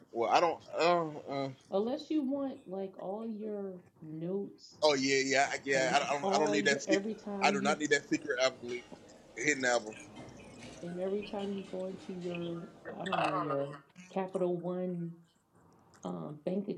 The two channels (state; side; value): identical; both; correlation 1.00